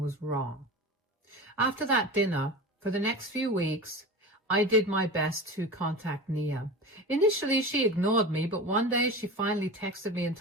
wrong. After that dinner, for the next few weeks, I did my best to contact Nia. Initially, she ignored me, but one day she finally texted me and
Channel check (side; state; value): both; normal; correlation 0.31